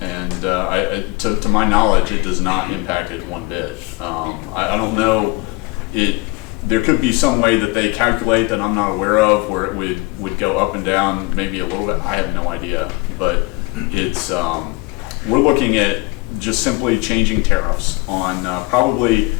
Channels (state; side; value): quieter; right; 25.0 dB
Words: to my knowledge, it does not impact it one bit. I don't know, there could be some way that they calculate that I'm not aware of where it would go up and down maybe a little bit. I have no idea, but it's we're looking at just simply changing tariffs on probably,